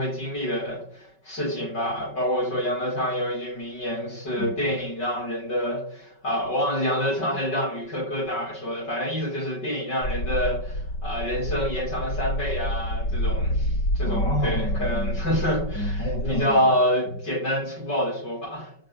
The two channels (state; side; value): late; right; 5.3 ms